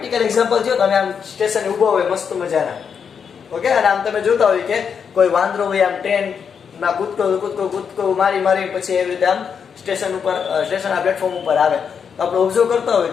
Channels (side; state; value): right; quieter; 6.8 dB